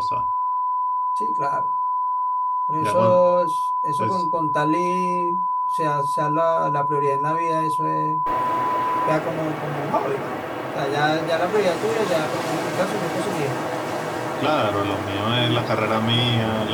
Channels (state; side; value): identical; both; correlation 1.00